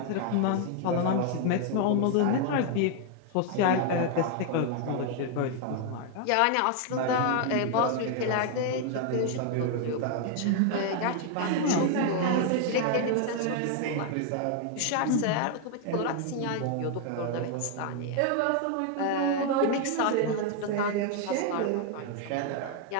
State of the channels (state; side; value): different; both; correlation 0.00